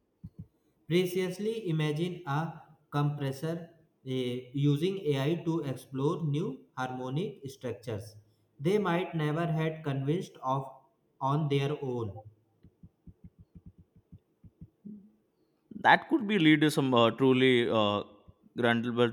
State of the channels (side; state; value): both; identical; correlation 1.00